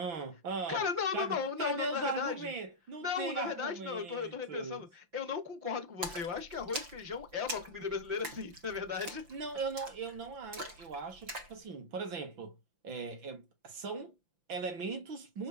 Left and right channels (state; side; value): late; left; 5.8 ms